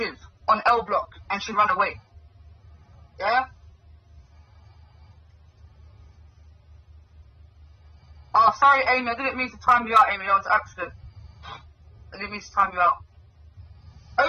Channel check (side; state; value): both; identical; correlation 1.00